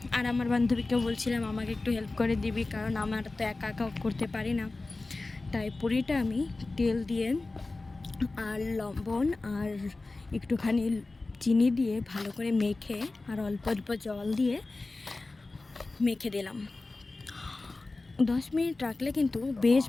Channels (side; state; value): right; quieter; 3.3 dB